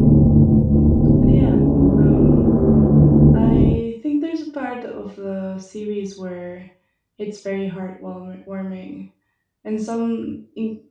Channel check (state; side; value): identical; both; correlation 1.00